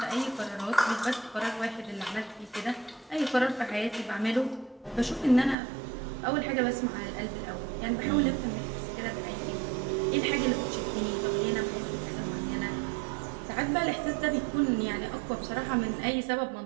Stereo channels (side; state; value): left; drops out; at 5.6 s